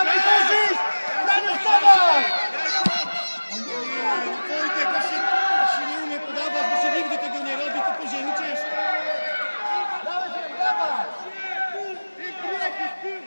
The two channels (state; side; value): inverted; both; correlation -1.00